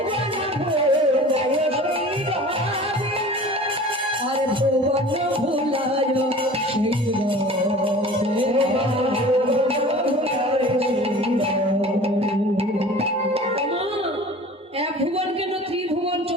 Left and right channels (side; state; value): both; normal; correlation 0.42